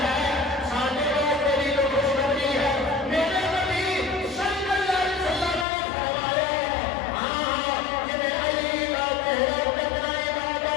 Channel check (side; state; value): right; drops out; at 5.7 s